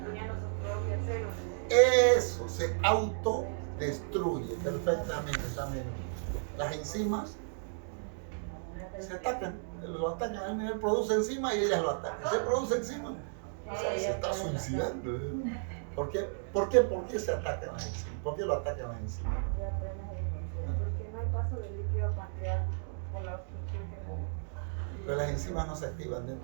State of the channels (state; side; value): silent; left; digital silence